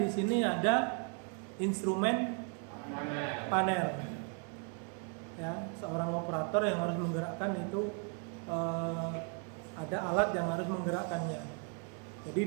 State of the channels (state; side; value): quieter; left; 38.2 dB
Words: sini ada instrumen panel. Ya, seorang operator yang harus menggerakkan itu ada alat yang harus menggerakkannya. Jadi